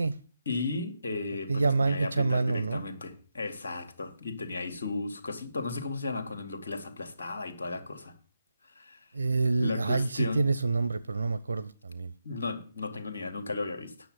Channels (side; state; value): both; inverted; correlation -0.86